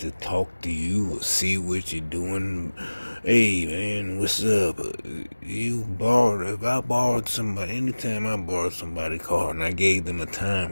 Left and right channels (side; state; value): both; inverted; correlation -1.00